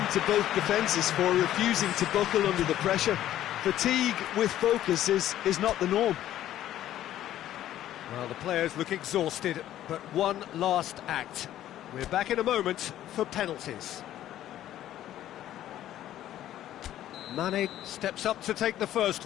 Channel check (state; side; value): quieter; right; 12.6 dB